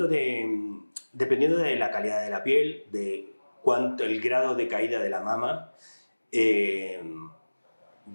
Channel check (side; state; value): both; inverted; correlation -1.00